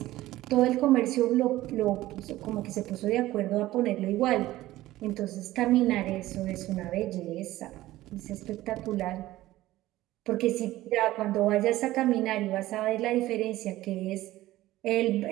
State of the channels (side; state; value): left; quieter; 16.2 dB